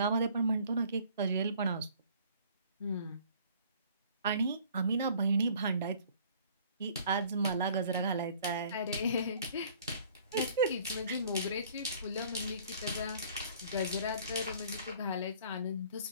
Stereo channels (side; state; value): both; inverted; correlation -0.54